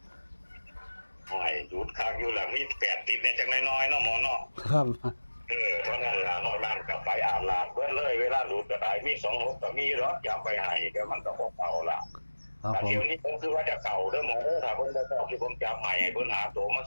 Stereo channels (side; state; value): both; inverted; correlation -1.00